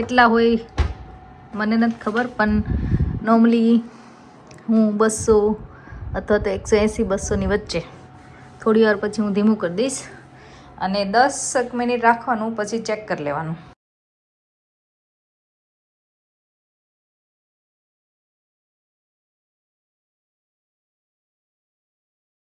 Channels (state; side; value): identical; both; correlation 1.00